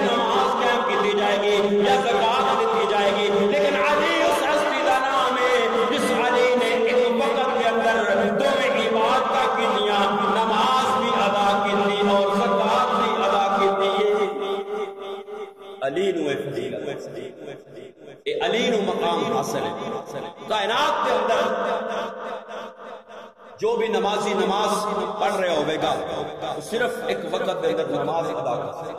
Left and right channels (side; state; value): both; identical; correlation 1.00